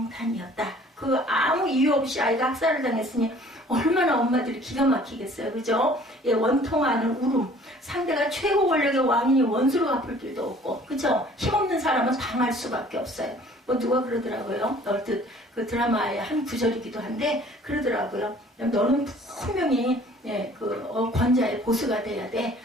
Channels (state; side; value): normal; both; correlation 0.53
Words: 그 아무 이유 없이 아이가 학살을 당했으니 얼마나 엄마들이 기가 막히겠어요. 그죠? 예, 원통하는 울음. 상대가 최고 권력의 왕이니 원수로 갚을 길도 없고, 그죠? 힘없는 사람은 당할 수밖에 없어요. 뭐 누가 그러더라고요. 얼핏 그 드라마의 한 구절이기도 한데 그러더라고요. 너는 분명히 권자의 보수가 돼야 돼.